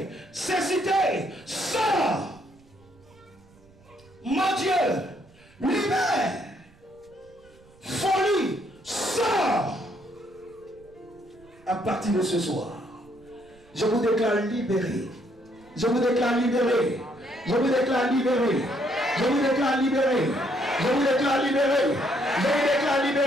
cécité, sors. Mon Dieu, libère, folie, sors. À partir de ce soir, je vous déclare libéré. Je vous déclare libéré. Je vous déclare libéré. Je vous déclare libéré. Je vous déclare libéré. Je vous déclare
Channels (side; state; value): right; noise; rumble, 28 dB below the sound